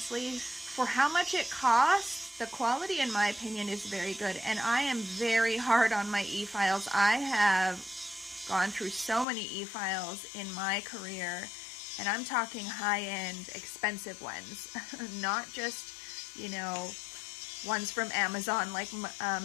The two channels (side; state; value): right; drops out; at 9.2 s